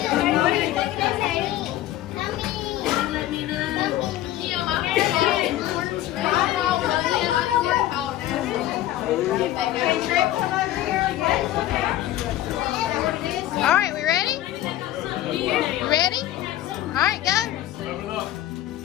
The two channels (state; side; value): quieter; right; 13.9 dB